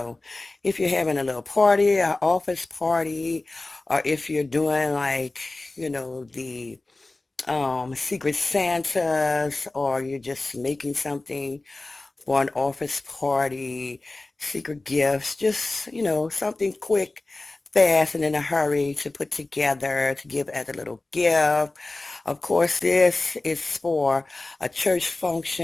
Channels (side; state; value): right; quieter; 3.0 dB